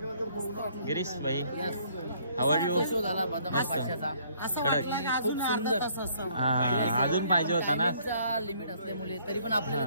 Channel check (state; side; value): inverted; both; correlation -0.63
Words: गिरीश भाई, हाऊ आर यू? मस्त अजून पाहिजे होता ना, लिमिट असल्यामुळे तरी पण आपल्याला